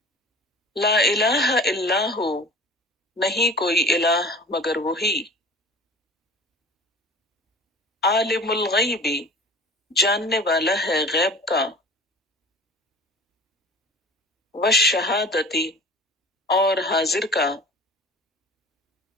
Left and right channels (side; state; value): both; normal; correlation 0.41